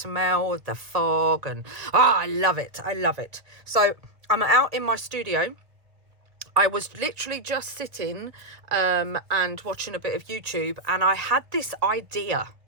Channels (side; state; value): left; late; 1.5 ms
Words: of the fog, and I love it, I love it. So I'm out in my studio. I was literally just sitting and watching a bit of YouTube, and I had this idea.